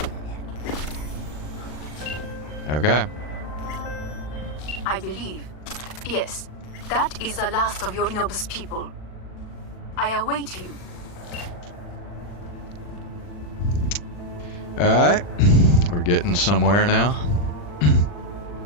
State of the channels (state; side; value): late; right; 40 ms